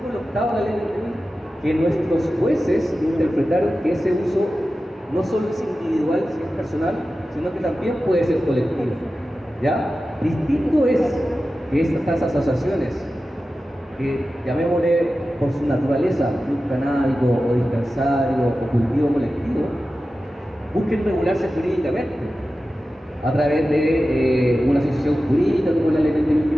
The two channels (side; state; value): both; normal; correlation 0.94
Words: 8 de la ley de que nuestros jueces interpretaron que ese uso no solo es individual, si es personal, sino que también puede ser colectivo. ¿Ya? Distinto es que estas asociaciones, que llamémosle por su naturaleza, club canábico o dispensario o cultivo colectivo, busquen regularse jurídicamente a través de una asociación jurídica como la ley del